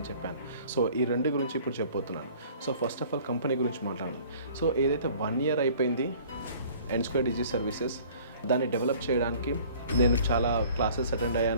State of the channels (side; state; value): both; inverted; correlation -0.51